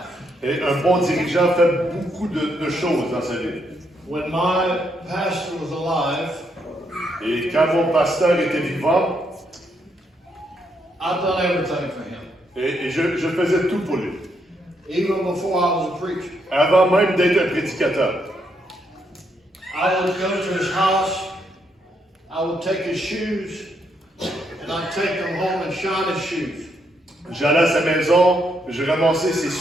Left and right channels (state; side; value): normal; both; correlation 0.77